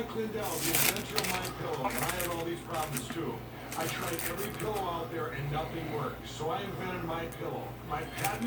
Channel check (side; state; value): both; identical; correlation 1.00